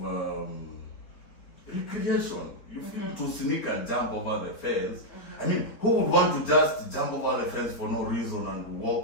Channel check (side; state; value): right; late; 4.2 ms